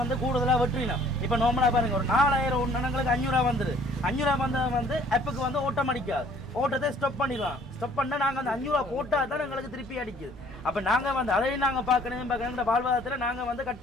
வந்து கூடுதலா வெற்றினோம். இப்ப நோமலா பாருங்க ஒரு 4000 எங்களுக்கு 500 ரூபாய் வந்துரு. 500 ரூபாய் வந்தது வந்து ஆப்புக்கு வந்து ஓட்டம் அடிக்காது, ஓட்டத்தை ஸ்டாப் பண்ணிடுவோம். ஸ்டாப் பண்ணா நாங்க அந்த 500 ரூபாய் போட்டா தான் எங்களுக்கு திருப்பி அடிக்குது. அப்ப நாங்க வந்து அதையும் நாங்க பாக்கணும் வாழ்வாதாரத்துல நாங்க வந்து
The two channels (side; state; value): both; normal; correlation 0.57